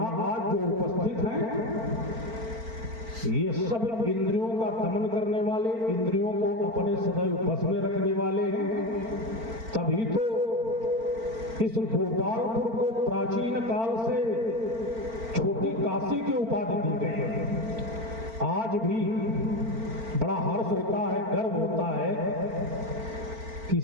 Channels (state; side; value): late; left; 4.4 ms